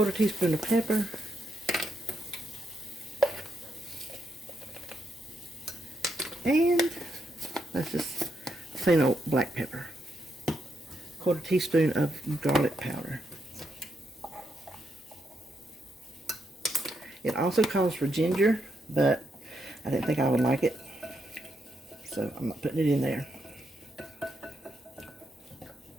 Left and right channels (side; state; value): both; normal; correlation 0.80